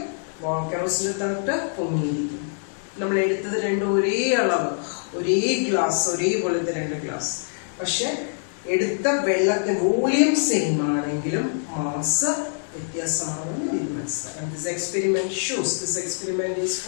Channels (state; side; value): silent; right; 62 dB below the other